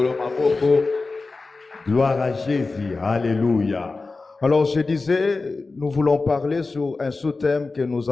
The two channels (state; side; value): quieter; right; 3.7 dB